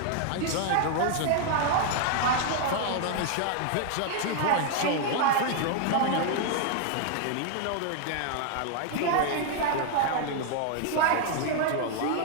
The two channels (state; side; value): different; both; correlation 0.00